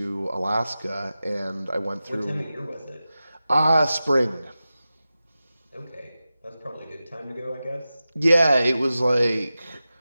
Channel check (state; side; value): inverted; both; correlation -0.94